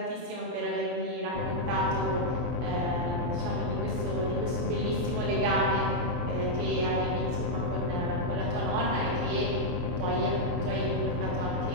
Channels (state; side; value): late; left; 23 ms